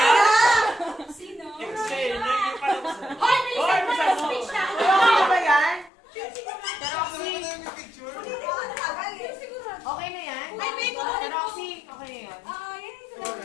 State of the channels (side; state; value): right; drops out; at 5.9 s